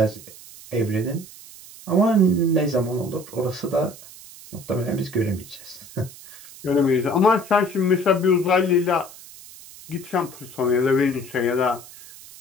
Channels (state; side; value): noise; right; hiss, 18 dB below the sound